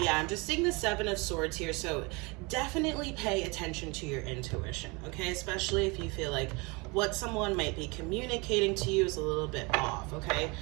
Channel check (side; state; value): left; quieter; 27.6 dB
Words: yeah, I'm just seeing the Seven of Swords here, so definitely pay attention to your intuition, okay? Especially if you feel like what someone might be communicating to you is a little bit off, okay?